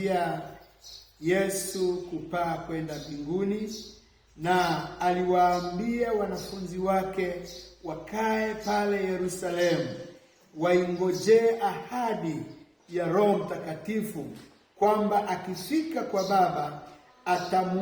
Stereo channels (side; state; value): both; identical; correlation 1.00